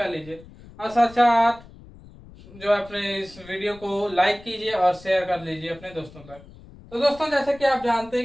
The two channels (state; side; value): noise; left; rumble, 21 dB below the sound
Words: लीजिए और साथ साथ जो अपने इस वीडियो को लाइक कीजिए और शेयर कर लीजिए अपने दोस्तों तक। तो दोस्तों, जैसे कि आप जानते